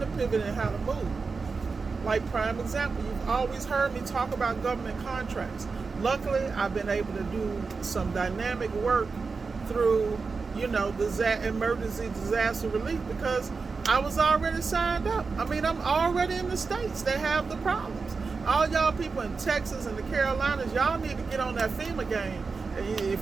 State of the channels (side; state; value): left; quieter; 4.6 dB